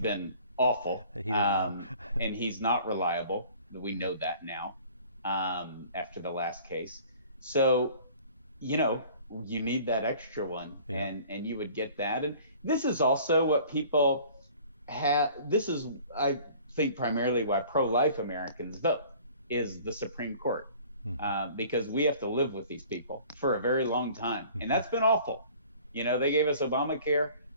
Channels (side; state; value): both; inverted; correlation -0.50